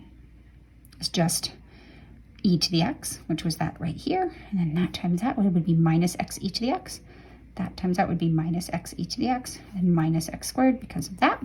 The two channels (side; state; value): both; identical; correlation 1.00